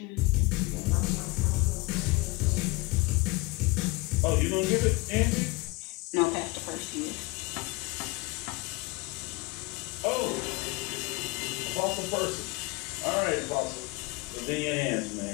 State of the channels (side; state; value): right; quieter; 23.5 dB